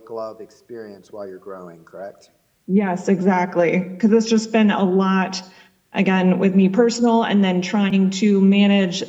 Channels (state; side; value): identical; both; correlation 1.00